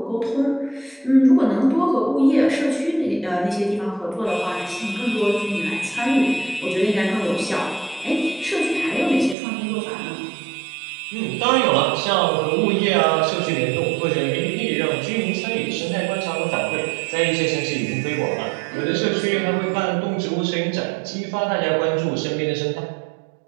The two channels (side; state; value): left; drops out; at 9.3 s